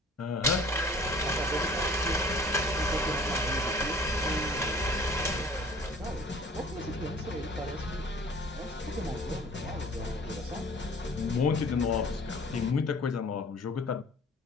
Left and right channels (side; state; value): both; normal; correlation 0.49